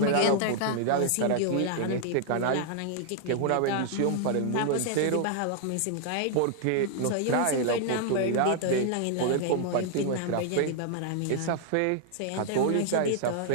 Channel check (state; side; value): different; both; correlation 0.00